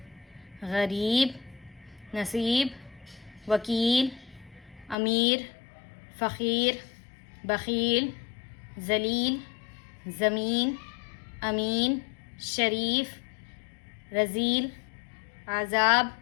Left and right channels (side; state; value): right; drops out; at 5.0 s